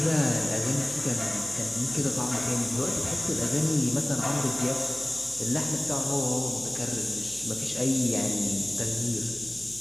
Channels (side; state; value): right; noise; hum, 19 dB below the sound